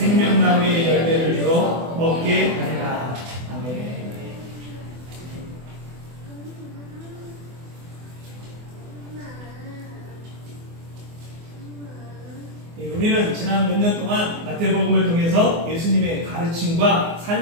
열매를 주어 먹게 하리라. 아멘. 우리는 지난 몇 년 동안 마태복음을 통해서 예수님의 가르침과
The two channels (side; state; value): left; late; 24 ms